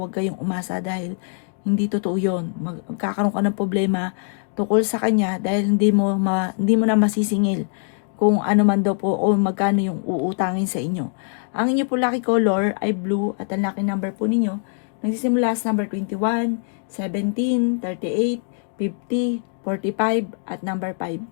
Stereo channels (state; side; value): silent; right; 64 dB below the other